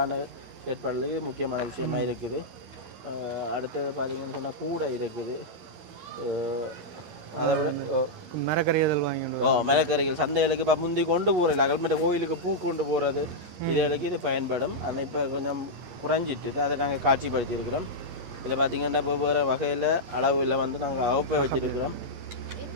செயற்பாடுகளுக்கு முக்கியமான விஷயமாக இருக்குது. அடுத்தது பார்த்தீங்கன்னு சொன்னால் கூடை இருக்குது. அதை விட மரக்கறிகள் வாங்கி மரக்கறிகள் சந்தைகளுக்கு இப்போ முந்தி கொண்டு போகிறதில்ல. அகல்மட்ட கோயிலுக்கு பூ கொண்டு போகிறது இதுகளுக்கு இது பயன்படும். ஆனால் இப்போ கொஞ்சம் குறைஞ்சிட்டு அதை நாங்கள் காட்சிப்படுத்தி இருக்கிறோம். இதில் பார்த்தீங்கன்னா வெவ்வேறு வகையில் அளவில் வந்து நாங்கள் அகப்பை வச்சுருக்கிறோம்.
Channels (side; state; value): left; late; 11 ms